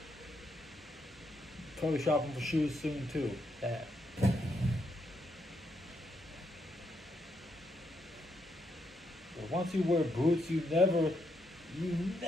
Probably shopping for shoes soon too. But once you wear boots, you never, you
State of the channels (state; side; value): normal; both; correlation 0.78